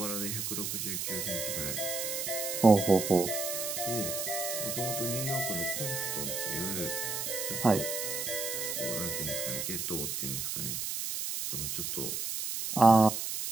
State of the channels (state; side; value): noise; right; hiss, 3 dB below the sound